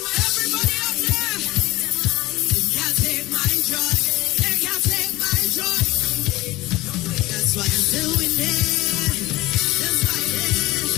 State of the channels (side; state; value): right; quieter; 19.2 dB